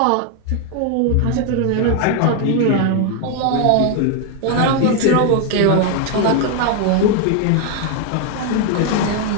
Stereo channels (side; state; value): both; different; correlation 0.01